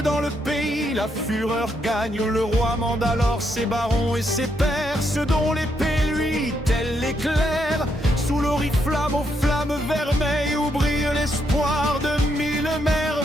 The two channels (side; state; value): both; normal; correlation 0.77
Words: le pays la fureur gagne, le roi mande alors ses barons et ses pairs, ceux dont l'épée lui, tel l'éclair, sous l'oriflamme aux flammes vermeilles où brille l'espoir de mille